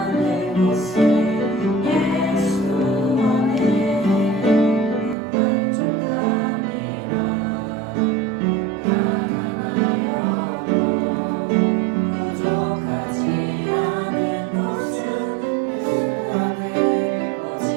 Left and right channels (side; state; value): left; drops out; at 5.2 s